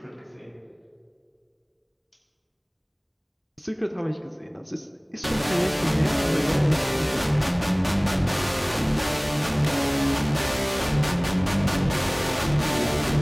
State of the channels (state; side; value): identical; both; correlation 1.00